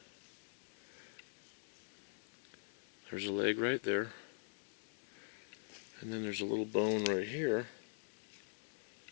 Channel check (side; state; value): right; silent; digital silence